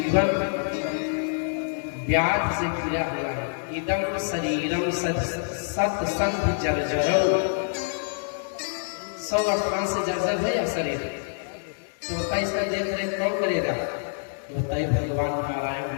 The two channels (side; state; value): right; silent; 61 dB below the other